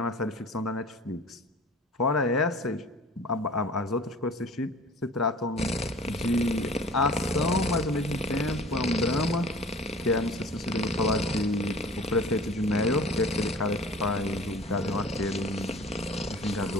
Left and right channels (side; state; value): both; normal; correlation 0.44